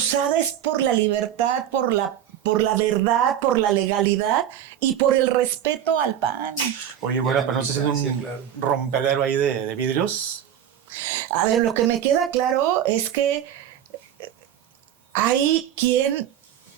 es por la libertad, por la verdad, por la legalidad y por el respeto al PAN. Oye, bueno, pero no se hace un rompedero ahí de vidrios. A ver, lo que me queda claro es que hay quien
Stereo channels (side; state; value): left; quieter; 10.3 dB